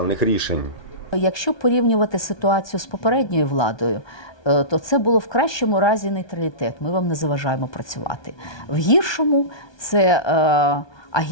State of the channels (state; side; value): late; right; 1.2 ms